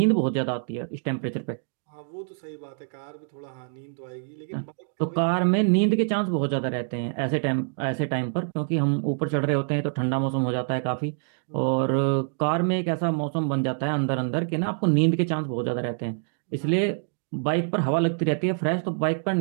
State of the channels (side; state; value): left; silent; 59 dB below the other